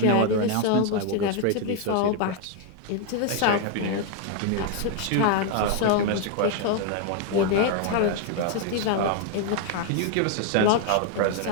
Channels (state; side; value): different; both; correlation 0.00